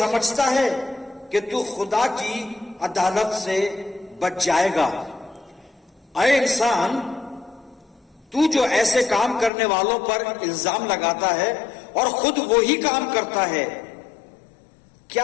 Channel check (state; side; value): drops out; right; at 9.5 s